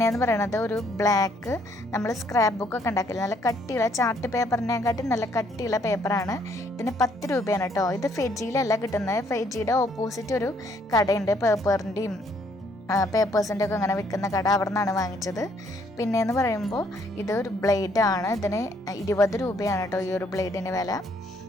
പറയുന്നത് ഒരു ബ്ലാക്ക്, നമ്മൾ സ്ക്രാപ്പ് ബുക്കൊക്കെ ഉണ്ടാക്കില്ല, നല്ല കട്ടിയുള്ള ചാർട്ട് പേപ്പറിനെക്കാട്ടി നല്ല കട്ടിയുള്ള പേപ്പറാണ്. ഇതിന് 10 രൂപയാണ് കേട്ടോ. ഇത് ഫെജിയിലല്ല കിട്ടുന്നത്. ഫെജിയുടെ ഓപ്പോസിറ്റ് ഒരു കടയുണ്ട്, പേപ്പറിൻ്റെയും പേപ്പേഴ്സിൻ്റെ ഒക്കെ അങ്ങനെ വിൽക്കുന്ന കട, അവിടെ നിന്നാണ് വാങ്ങിച്ചത്. പിന്നെയെന്ന് പറയുമ്പോൾ ഇതൊരു ബ്ലേഡാണ്. ഇതിന് 20 രൂപയാണ് കേട്ടോ ഈ ഒരു ബ്ലേഡിന് വില.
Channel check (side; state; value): both; normal; correlation 0.67